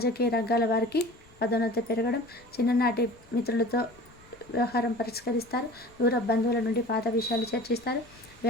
రంగాల వారికి పదోన్నతి పెరగడం. చిన్ననాటి మిత్రులతో వ్యవహారం పరిష్కరిస్తారు. దూర బంధువుల నుండి పాత విషయాలు చర్చిస్తారు.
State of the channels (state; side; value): noise; left; rumble, 26 dB below the sound